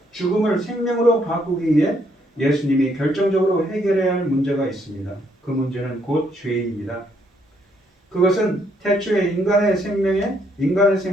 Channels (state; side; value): normal; both; correlation 0.72